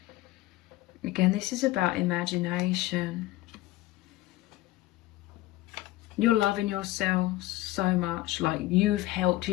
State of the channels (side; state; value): right; quieter; 17.3 dB